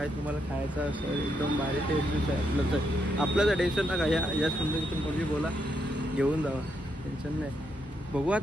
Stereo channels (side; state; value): both; normal; correlation 0.79